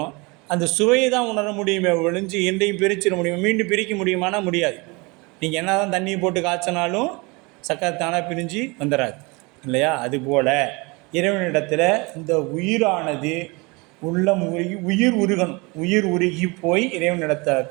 அந்த சுவையை தான் உணர முடியுமே ஒழிஞ்சு எந்தையும் பிரிச்சிட முடியும். மீண்டும் பிரிக்க முடியுமானா முடியாது. நீங்கள் என்ன தான் தண்ணியை போட்டு காய்ச்சினாலும் சர்க்கரை தானாக பிரிஞ்சு வந்துடாது இல்லையா? அதுபோல் இறைவனிடத்தில் இந்த உயிரானது உள்ளம் உருகி உயிர் உருகி போய் இறைவனிடத்த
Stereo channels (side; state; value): left; quieter; 27.1 dB